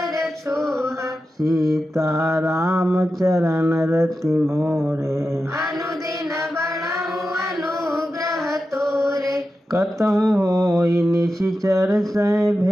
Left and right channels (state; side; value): normal; both; correlation 0.91